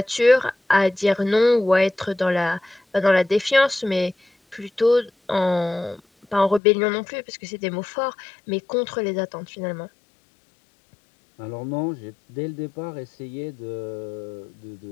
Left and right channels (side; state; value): right; drops out; at 6.6 s